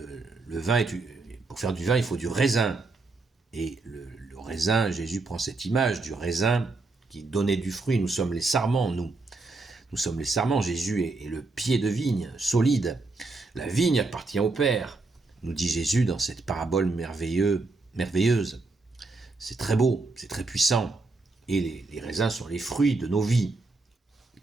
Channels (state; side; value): quieter; left; 3.5 dB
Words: vin, pour faire du vin, il faut du raisin. Et le raisin, Jésus prend cette image du raisin qui donnait du fruit. Nous sommes les sarments, nous. Nous sommes les sarments. Jésus est le pied de vigne, solide. La vigne appartient au Père, nous dit Jésus dans cette parabole merveilleuse. C'est très beau, c'est très puissant. Et les raisins sont les fruits de nos vies,